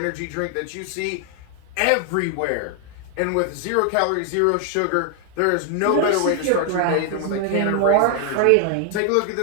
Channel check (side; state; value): both; different; correlation 0.00